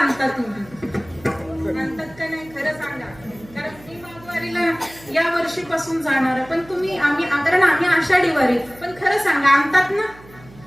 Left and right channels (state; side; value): noise; right; hum, 22 dB below the sound